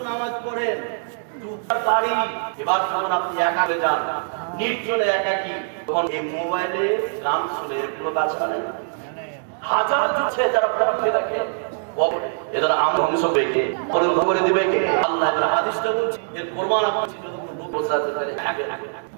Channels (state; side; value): silent; left; digital silence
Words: নামাজ পড়েন, দুটার বাড়ি, এবার যখন আপনি একা হয়ে যান, নির্জনে একাকী, তখন এই মোবাইলে গান শুনে এগুলো কাজটা নেই। হাজার জুটছে যারা পড়তে দেখে, এদের আমরা ধ্বংস পেয়ে করে দিবে কে? আল্লাহ। এবার হাদিসটা বলছে যে কোরবান আপনি যদি কোনো লোক বসে আছে তাহলে আগে